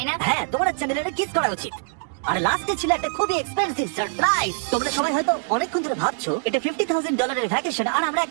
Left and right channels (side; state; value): left; silent; digital silence